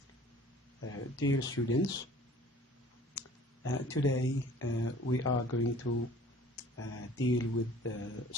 Dear students, today we are going to deal with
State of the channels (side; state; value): both; normal; correlation 0.49